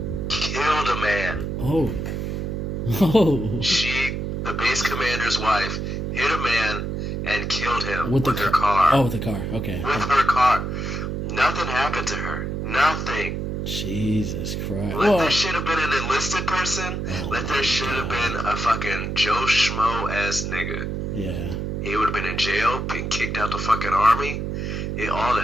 killed a man. Oh. The base commander's wife hit a man and killed him with her car. Oh, with the car. Okay. With her car. Nothing happened to her. Nothing. Jesus Christ. Let that shit have been an enlisted person. Let that shit have been a fucking Joe Schmo ass nigga. Yeah. He would have been in jail, been kicked out the fucking army. Yeah, all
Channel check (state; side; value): noise; right; hum, 3 dB below the sound